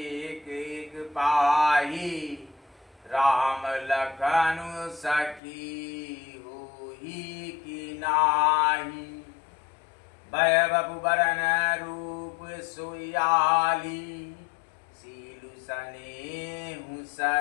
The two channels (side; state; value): right; drops out; at 5.4 s